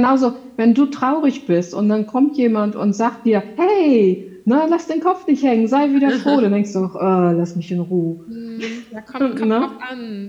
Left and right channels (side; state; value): both; identical; correlation 1.00